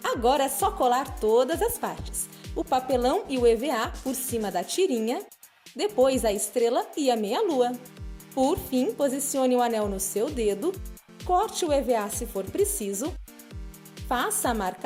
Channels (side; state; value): both; identical; correlation 1.00